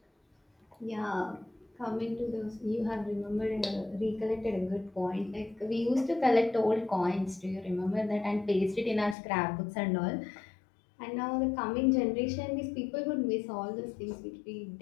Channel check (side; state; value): right; drops out; at 9.2 s